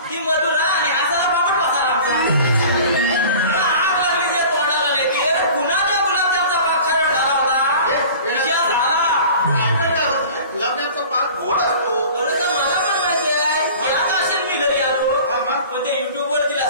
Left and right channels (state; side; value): inverted; both; correlation -0.42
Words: ती मधुरा आणि हासाला पापड बसायला आमचा आग लागली त्या तोंडाला नाही ती कुणाच्या गुलाबजामचा पाक खरड झाला होता विषय झाला. गुलाबजामचा पाक गोड असतो. बरं तर मला पण माहिती आहे याच असेल मी घरी आलो पण ते युट्यूब वर तिला